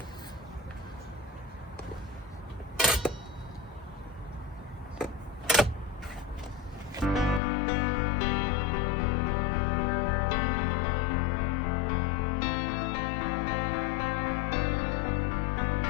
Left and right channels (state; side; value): drops out; right; at 7.4 s